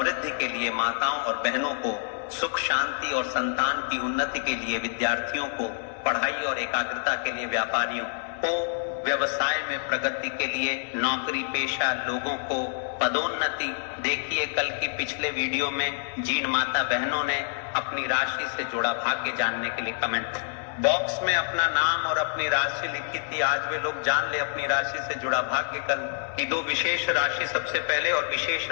के लिए, माताओं और बहनों को सुख शांति और संतान की उन्नति के लिए, विद्यार्थियों को पढ़ाई और एकाग्रता के लिए, व्यापारियों को व्यवसाय में प्रगति के लिए, नौकरी पेशा लोगों को पदोन्नति। देखिए कल की पिछले वीडियो में जिन माता बहनों ने अपनी राशि से जुड़ा भाग्य जानने के लिए कमेंट बॉक्स में अपना नाम और अपनी राशि लिखी थी, आज वे लोग जान ले अपनी राशि से जुड़ा भाग्य। कल की दो विशेष राशि सबसे पहले और विशेष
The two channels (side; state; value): right; silent; 60 dB below the other